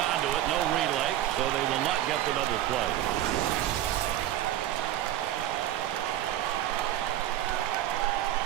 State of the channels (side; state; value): left; quieter; 12.8 dB